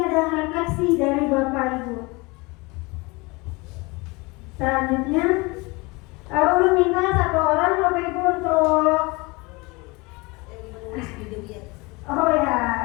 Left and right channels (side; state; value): right; quieter; 25.6 dB